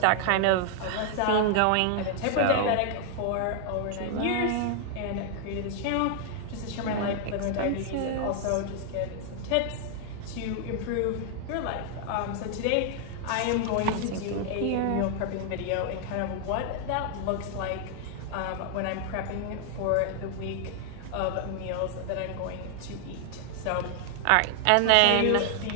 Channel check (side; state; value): both; different; correlation 0.00